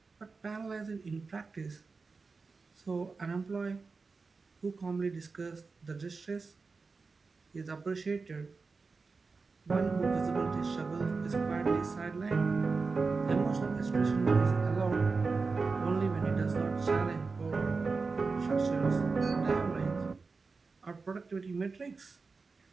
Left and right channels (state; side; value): quieter; left; 4.3 dB